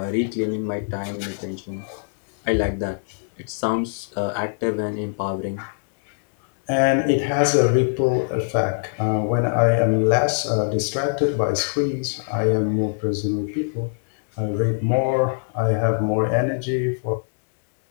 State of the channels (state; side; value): silent; right; digital silence